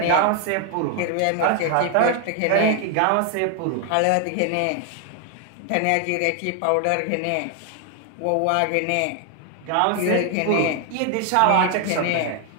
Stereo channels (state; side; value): different; both; correlation 0.00